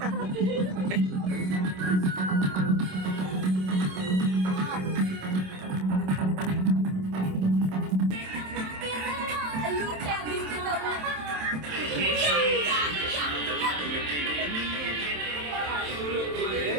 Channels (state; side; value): late; left; 27 ms